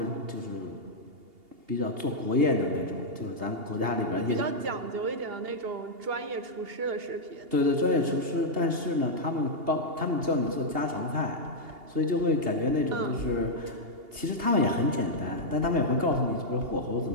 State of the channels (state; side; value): late; left; 2.8 ms